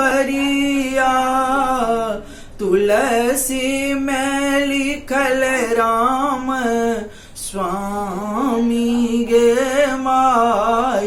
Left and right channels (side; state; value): both; identical; correlation 1.00